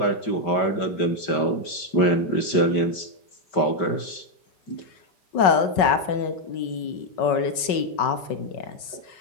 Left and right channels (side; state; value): right; late; 5.4 ms